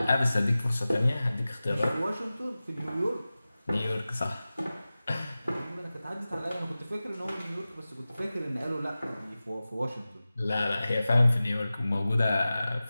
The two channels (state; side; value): inverted; both; correlation -0.96